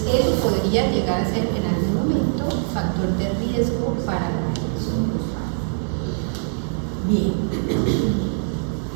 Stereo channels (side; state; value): left; silent; digital silence